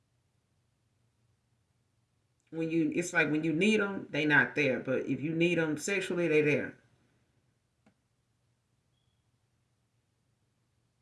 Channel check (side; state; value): both; identical; correlation 1.00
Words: like when you need them, they not there. But if you need them sexually, they there.